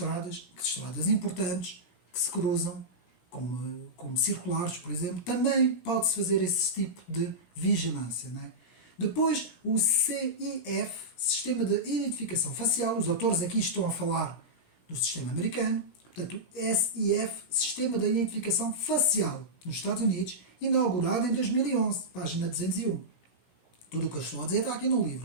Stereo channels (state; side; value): late; right; 16 ms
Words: importantes que se cruzam, como circulares, por exemplo, também pode-se fazer esse tipo de vigilância, não é? Depois, o CIF, Sistema de Identificação Facial, os autores aqui estão a falar do sistema americano, portanto, o SIF, Sistema de Identificação Facial, nos Estados Unidos, inaugurado em 2011, página 201. Tudo o que eu estou a dizer está aqui no